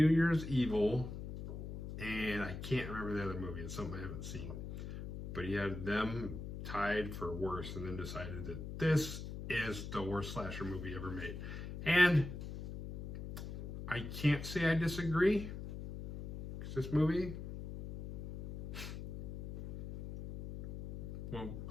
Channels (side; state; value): left; noise; hum, 8 dB below the sound